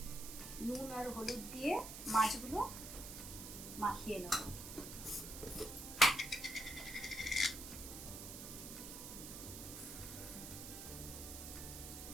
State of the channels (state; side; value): noise; right; hiss, 9 dB below the sound